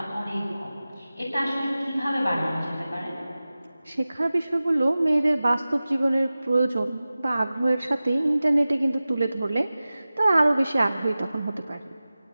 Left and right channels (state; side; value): inverted; both; correlation -0.97